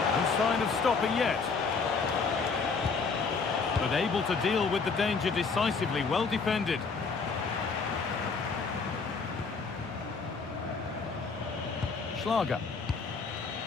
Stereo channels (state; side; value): quieter; right; 4.8 dB